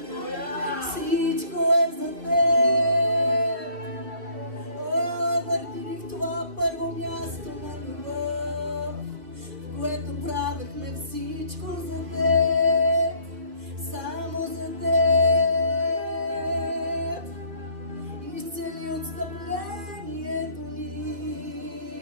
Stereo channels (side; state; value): left; late; 2.4 ms